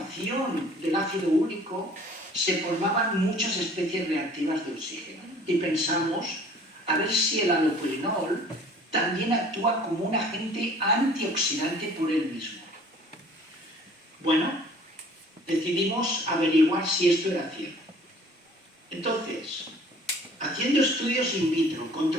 del ácido úrico se formaban muchas especies reactivas de oxígeno. Y pensamos, a ver si el allopurinol también actúa como un agente antioxidante por él mismo. Bueno, decidimos averiguar si esto era cierto. Entonces, haciendo estudios in vitro con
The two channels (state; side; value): normal; both; correlation 0.51